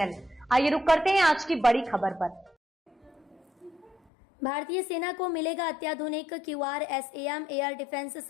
आइए रुक करते हैं आज की बड़ी खबर पर। भारतीय सेना को मिलेगा अत्याधुनिक QRSAM air defence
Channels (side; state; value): right; drops out; at 4.0 s